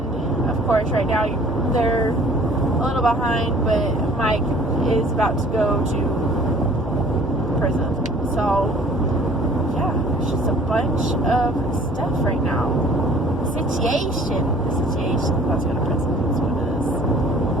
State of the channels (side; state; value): both; normal; correlation 0.52